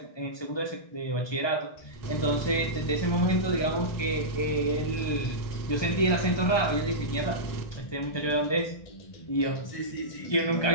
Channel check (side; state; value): right; late; 1.2 ms